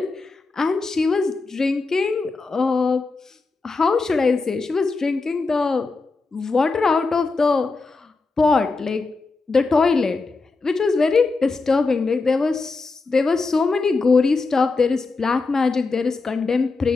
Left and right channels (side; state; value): right; quieter; 3.9 dB